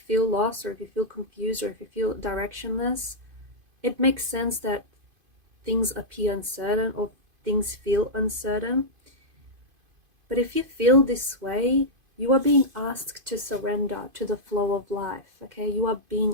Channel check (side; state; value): left; late; 2.5 ms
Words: lost, or if you feel confused, or if you feel directionless, it makes sense that things appear uncertain or things feel uncertain. But if you feel this way, you are being asked to surrender to the flow of life, okay? You are